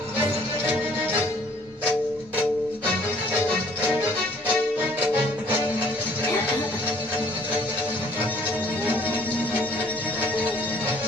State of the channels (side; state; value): both; normal; correlation 0.58